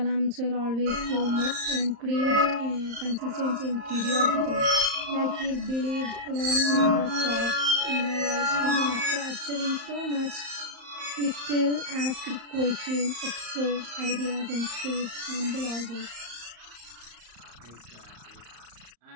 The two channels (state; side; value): late; left; 34 ms